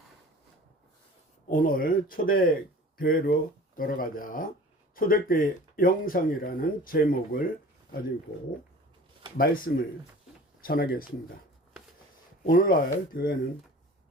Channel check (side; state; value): both; normal; correlation 0.43